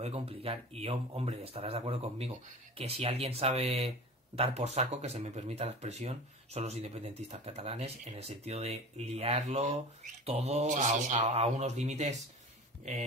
complicar. Y hombre, estarás de acuerdo conmigo que si alguien sabe dar por saco, que se me permita la expresión, son los independentistas catalanes, en el sentido de liarlo todo sí. A unos límites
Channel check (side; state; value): both; normal; correlation 0.35